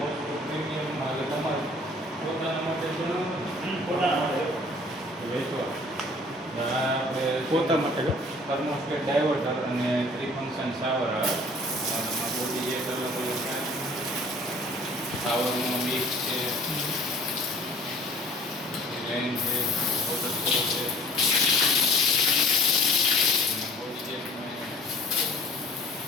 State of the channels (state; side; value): normal; both; correlation 0.51